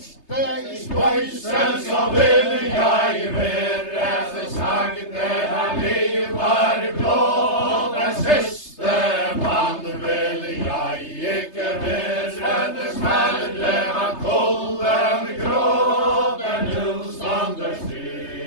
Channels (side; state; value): right; late; 3.3 ms